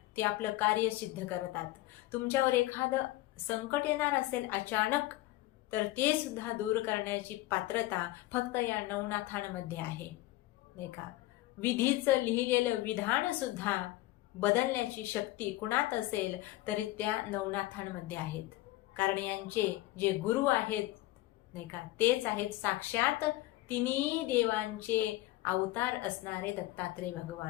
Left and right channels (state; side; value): quieter; right; 17.6 dB